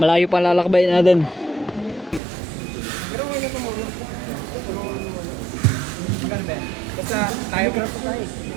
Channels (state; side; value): drops out; left; at 2.2 s